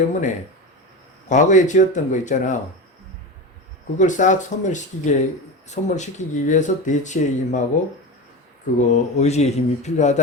과거에 지었던 거 있잖아. 그걸 싹 소멸시키기 위해서 대치의 힘하고, 의지의 힘이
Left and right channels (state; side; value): normal; both; correlation 0.24